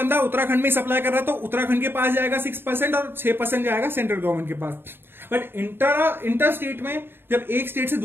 उत्तराखंड में सप्लाई कर रहा है तो उत्तराखंड के पास जाएगा 6% और 6% जाएगा सेंट्रल गवर्नमेंट के पास। बट इंटर स्टेट में जब एक स्टेट से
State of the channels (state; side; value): late; left; 0.10 ms